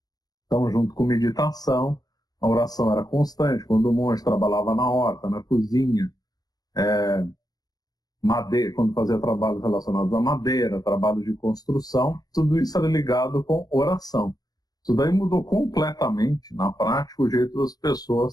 Então, junto com meditação, a oração era constante. Quando o monge trabalhava na horta, na cozinha, madeira, quando fazia trabalhos relacionados à madeira, trabalhos de construção, tudo isso era ligado com oração. Isso daí mudou completamente, na prática, o jeito das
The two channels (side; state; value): right; late; 0.19 ms